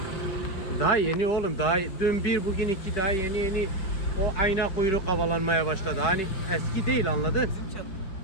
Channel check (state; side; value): late; right; 5.2 ms